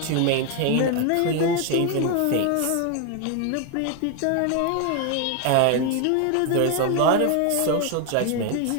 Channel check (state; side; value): different; both; correlation 0.01